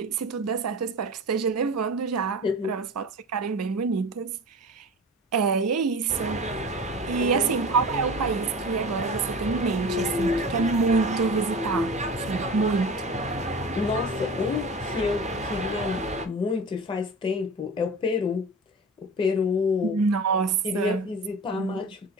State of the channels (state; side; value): normal; both; correlation 0.34